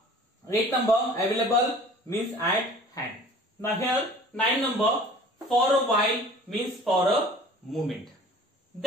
eighth number, available means at hand. Now here nine number, for a while means for a moment.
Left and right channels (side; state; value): both; normal; correlation 0.46